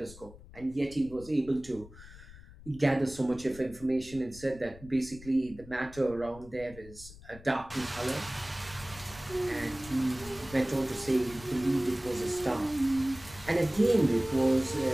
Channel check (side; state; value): left; noise; rumble, 18 dB below the sound